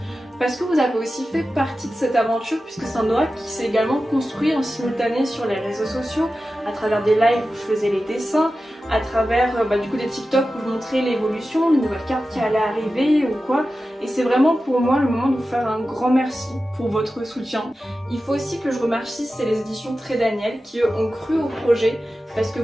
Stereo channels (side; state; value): both; normal; correlation 0.93